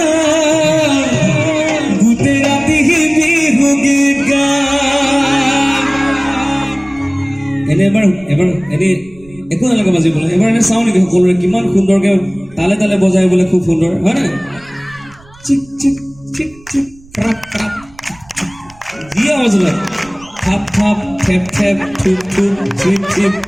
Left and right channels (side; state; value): right; noise; rumble, 25 dB below the sound